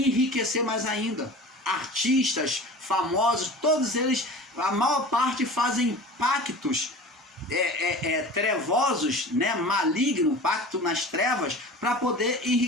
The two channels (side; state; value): both; normal; correlation 0.37